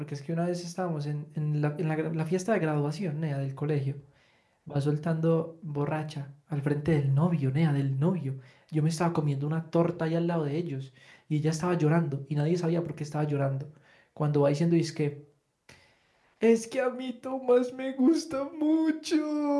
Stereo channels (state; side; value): identical; both; correlation 1.00